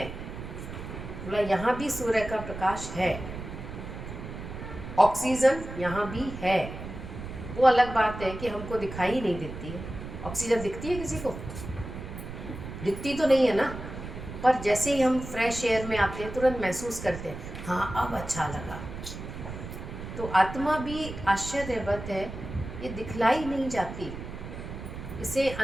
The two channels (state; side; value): noise; right; rumble, 9 dB below the sound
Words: बोला यहाँ भी सूर्य का प्रकाश है, ऑक्सीजन यहाँ भी है। वो अलग बात है कि हमको दिखाई नहीं देती है। ऑक्सीजन दिखती है किसी को? दिखती तो नहीं है ना, पर जैसे ही हम फ्रेश एयर में आते हैं तुरंत महसूस करते हैं हाँ अब अच्छा लगा। तो आत्मा भी आश्चर्यवत है, ये दिखलाई नहीं जाती, इसे